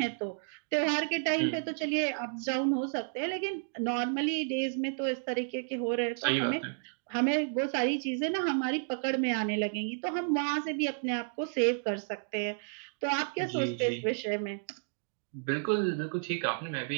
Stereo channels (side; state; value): left; silent; digital silence